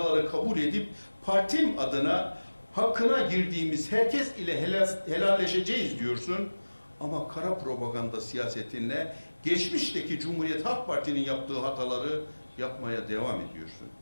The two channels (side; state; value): both; inverted; correlation -1.00